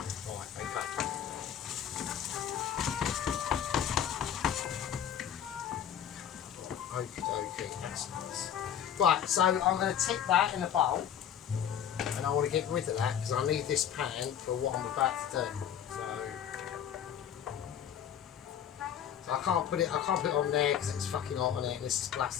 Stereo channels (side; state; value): right; quieter; 9.3 dB